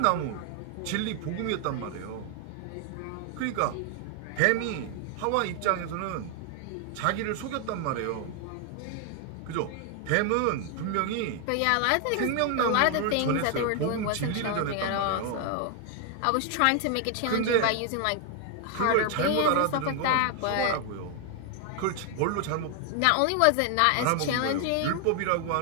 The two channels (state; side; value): different; both; correlation 0.00